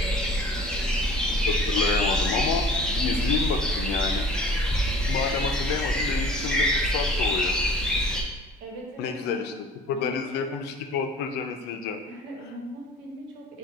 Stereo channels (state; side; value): normal; both; correlation 0.46